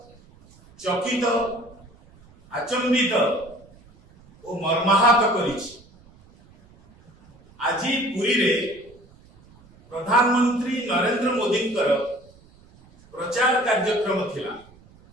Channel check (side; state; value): right; noise; rumble, 27 dB below the sound